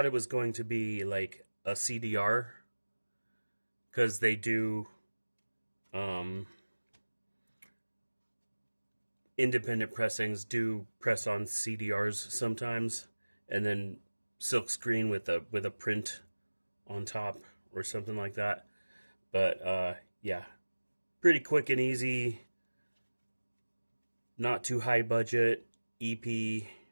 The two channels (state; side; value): inverted; both; correlation -1.00